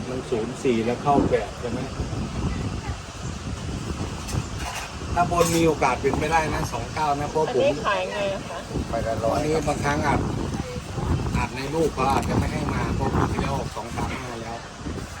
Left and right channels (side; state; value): both; identical; correlation 1.00